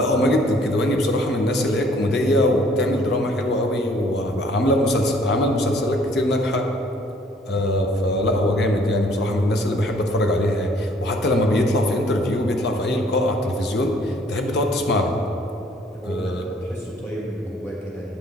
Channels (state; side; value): normal; both; correlation 0.60